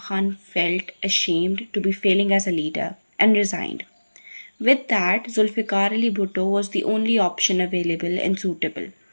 Khan felt ashamed to be failing as a leader and resigned. With that, Zulfiqar Ali Bhutto was the only option available and suitable,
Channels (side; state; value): both; inverted; correlation -1.00